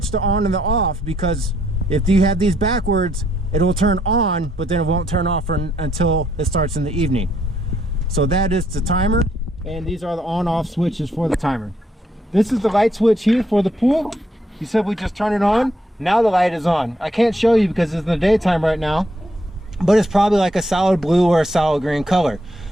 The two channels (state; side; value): normal; both; correlation 0.73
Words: the on and the off, because if you have these backwards, it will turn on, but then it won't turn off until it starts in the evening. So that is the timer, and these are the on-off switches for the timer. This is the light switch here for the pool. You simply just turn it on. Now the light is on. I can't show you because it's in the daytime right now, but it's probably like a solid blue or a solid green color.